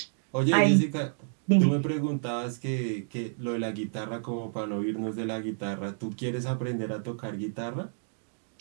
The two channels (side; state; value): left; silent; digital silence